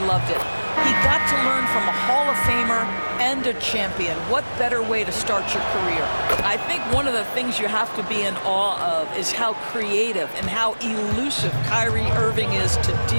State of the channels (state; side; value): inverted; both; correlation -1.00